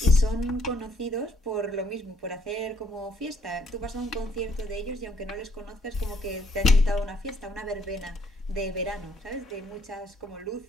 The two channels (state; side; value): normal; both; correlation 0.67